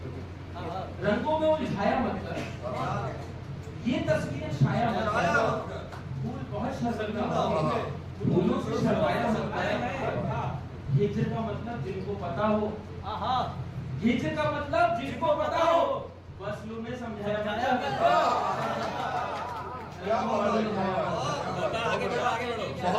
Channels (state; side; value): identical; both; correlation 1.00